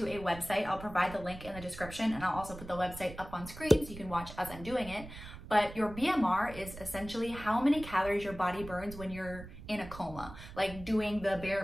a website. I'll provide the link in the description, and I'll also put the website up on screen so you can watch as I'm doing it. But your BMR is essentially how many calories your body burns when you're in a coma, like doing the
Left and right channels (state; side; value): noise; right; rumble, 14 dB below the sound